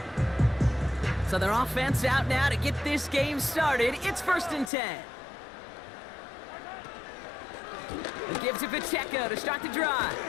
So their offense out now to get this game started. It's 1st and 10. He gives it Pacheco to start the drive.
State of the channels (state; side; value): drops out; right; at 4.7 s